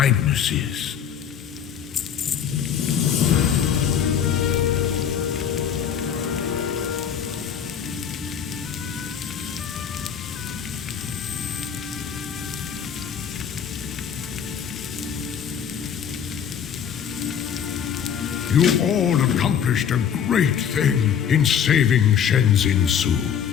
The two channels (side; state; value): right; quieter; 8.2 dB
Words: You all accomplished a great thing in saving Shenzin Su.